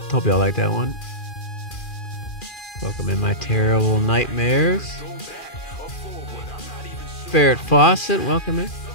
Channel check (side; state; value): right; late; 2.4 ms